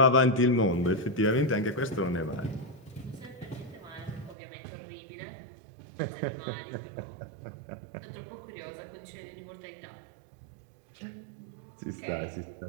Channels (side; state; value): left; drops out; at 4.4 s